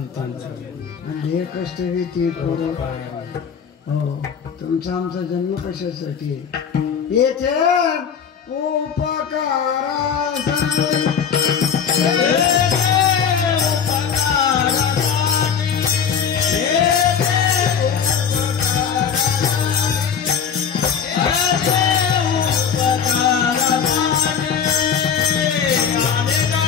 आणि हे कष्ट ती करू. हो, तुमचा आमचा जन्म कशासाठी, येथे उपकारा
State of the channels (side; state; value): right; quieter; 7.3 dB